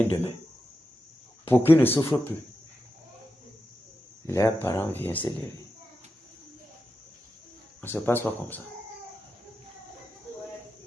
demain, pour qu'ils ne souffrent plus. Leurs parents viennent s'élever. On ne se passe pas comme ça.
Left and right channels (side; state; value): both; normal; correlation 0.89